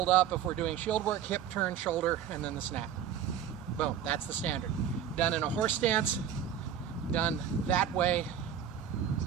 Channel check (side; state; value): left; quieter; 9.0 dB